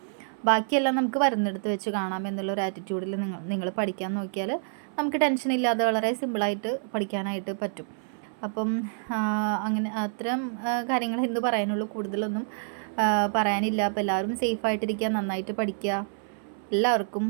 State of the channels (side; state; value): left; silent; 60 dB below the other